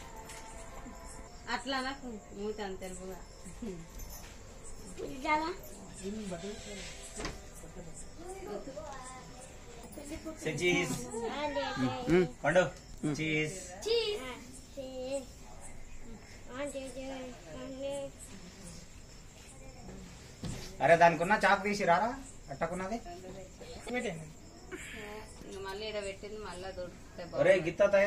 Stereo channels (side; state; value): both; identical; correlation 1.00